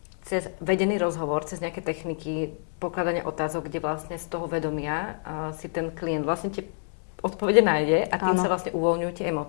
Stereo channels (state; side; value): silent; right; digital silence